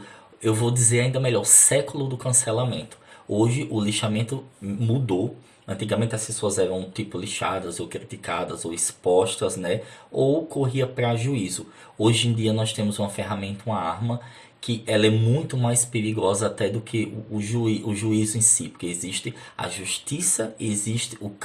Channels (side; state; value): both; identical; correlation 1.00